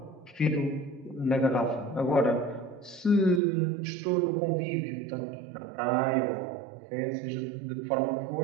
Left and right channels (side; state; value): left; drops out; at 3.4 s